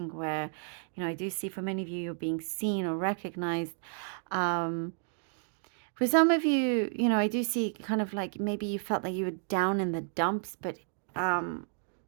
where, I do see for many of you, you're being seen or recognized. For some of you, I do see kind of like maybe you felt like you were down in the dumps, but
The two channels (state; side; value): silent; left; digital silence